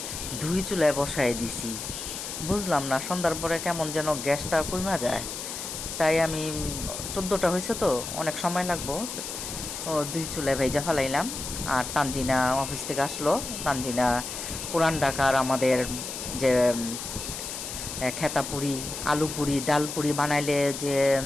দুই চুলায় বসায় দিছি। বুঝলাম না সন্ধ্যার পরে কেমন যেন গ্যাসটা কইমা যায়, তাই আমি 14টা হয়েছে তো অনেক সময় লাগবো, দুই চুলায় ভেজা ফেলাইলাম। আর তানজিনা অফিস থেকে আসলো। তানজিনা পুরান ঢাকার আমাদের যে খেতা পুরি, আলু পুরি, ডাল পুরি বানাইলে যে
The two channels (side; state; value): left; noise; hiss, 7 dB below the sound